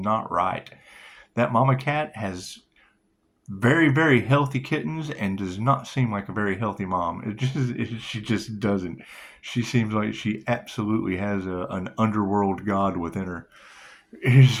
right. That mama cat has very, very healthy kittens and does not seem like a very healthy mom. She just doesn't. She seems like she absolutely has an underworld god within her. It is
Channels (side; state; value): both; identical; correlation 1.00